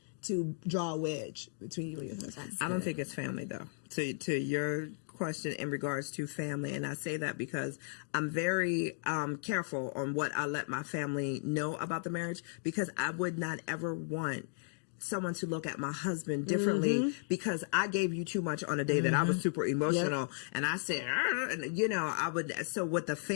to draw a wedge between you and your husband. I don't think it's family though. To your question in regards to family, and I say that because I'm very careful on what I let my family know about the marriage because I would not ever want someone to look at my husband differently because I gave you too much on a day that I was super emotional and I said, and you know, I would. So with the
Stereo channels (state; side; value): silent; right; digital silence